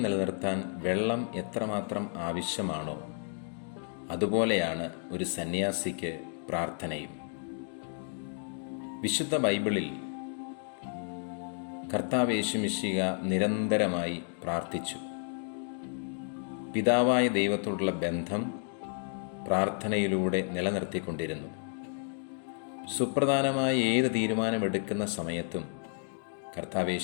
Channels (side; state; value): right; silent; 57 dB below the other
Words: നിലനിർത്താൻ വെള്ളം എത്രമാത്രം ആവശ്യമാണോ അതുപോലെയാണ് ഒരു സന്യാസിക്ക് പ്രാർത്ഥനയും. വിശുദ്ധ ബൈബിളിൽ കർത്താവ് യേശുമിശിഹ നിരന്തരമായി പ്രാർത്ഥിച്ചു. പിതാവായ ദൈവത്തോടുള്ള ബന്ധം പ്രാർത്ഥനയിലൂടെ നിലനിർത്തിക്കൊണ്ടിരുന്നു. സുപ്രധാനമായ ഏത് തീരുമാനമെടുക്കുന്ന സമയത്തും കർത്താവ്